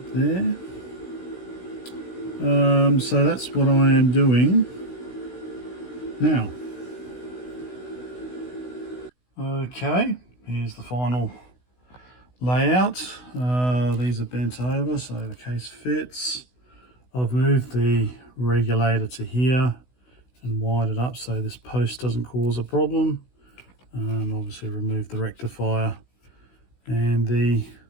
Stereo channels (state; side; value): late; right; 16 ms